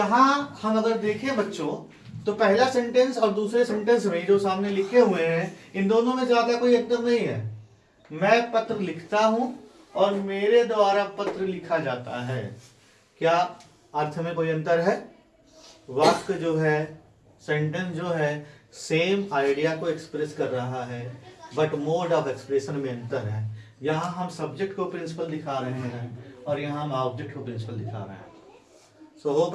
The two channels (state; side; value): identical; both; correlation 1.00